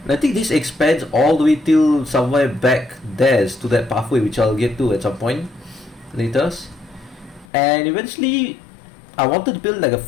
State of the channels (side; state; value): right; drops out; at 7.5 s